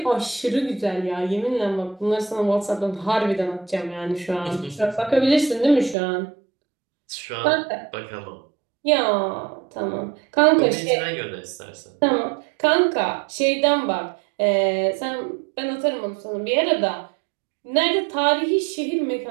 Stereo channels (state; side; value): drops out; left; at 6.0 s